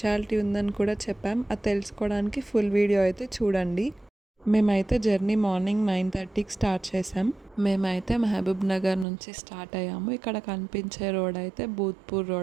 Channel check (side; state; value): left; drops out; at 9.1 s